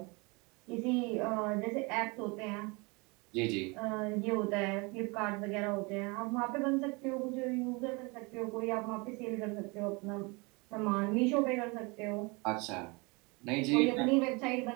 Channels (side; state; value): left; quieter; 28.1 dB